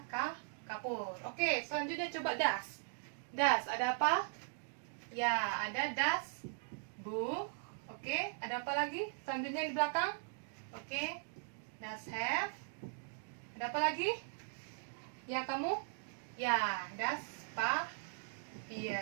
kapur. Oke, selanjutnya coba das. Das, ada apa? Ya, ada das buch. Oke, ada apa lagi? Selanjutnya di belakang. Oke, das Heft. Ada apa lagi? Ya, kamu? Ya, das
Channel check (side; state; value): left; silent; digital silence